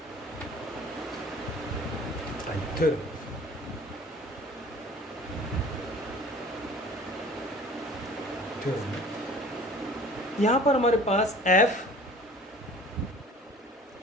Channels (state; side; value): normal; both; correlation 0.46